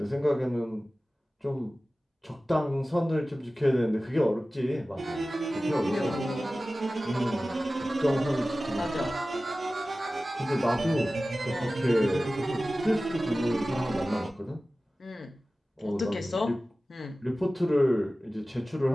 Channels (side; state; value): both; normal; correlation 0.96